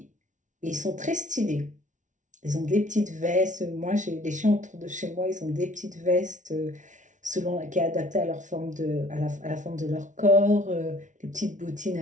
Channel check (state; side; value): late; left; 0.37 ms